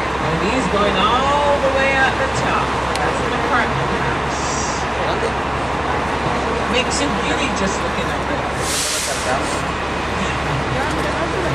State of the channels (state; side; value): noise; left; hum, 22 dB below the sound